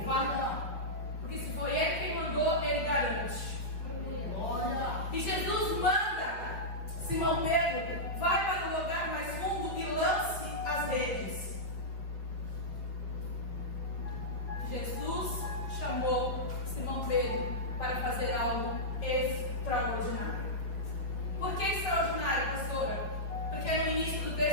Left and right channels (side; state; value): right; late; 5.2 ms